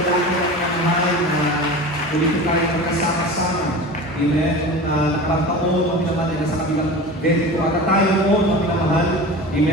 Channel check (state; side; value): normal; both; correlation 0.33